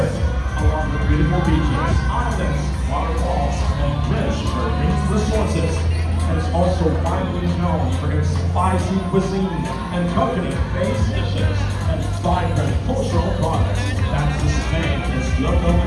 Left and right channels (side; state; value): both; identical; correlation 1.00